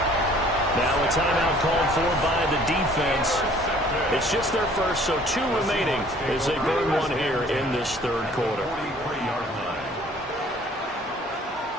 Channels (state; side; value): normal; both; correlation 0.55